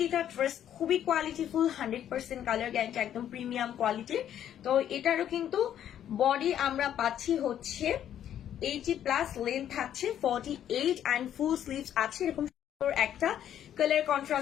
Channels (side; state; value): right; quieter; 10.4 dB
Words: ড্রেস খুবই কোয়ালিটিফুল, 100% কালার গ্যারান্টি, একদম প্রিমিয়াম কোয়ালিটির। তো এটারও কিন্তু বডি আমরা পাচ্ছি হচ্ছে 80+, লেন্থ থাকছে 48 এন্ড ফুল স্লিভস আছে। এরকম একটা কালার